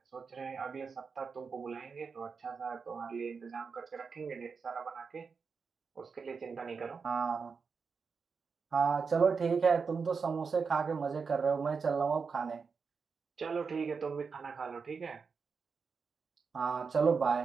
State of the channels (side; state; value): left; quieter; 5.3 dB